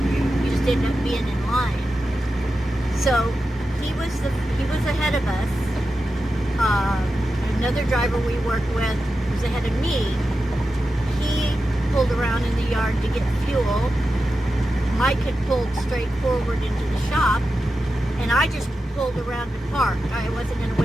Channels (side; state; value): both; normal; correlation 0.91